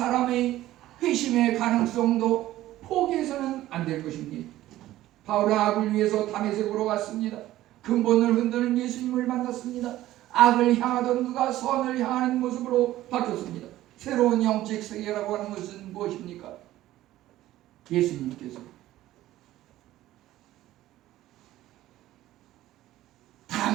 회심의 가능성도 포기해서는 안 될 것입니다. 바울은 악을 위해서 다메섹으로 갔습니다. 근본을 흔드는 예수님을 만났습니다. 악을 향하던 그가 선을 향하는 모습으로 바뀌었습니다. 새로운 영적 세계라고 하는 것은 무엇입니까? 예수님께서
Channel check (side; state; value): left; quieter; 14.9 dB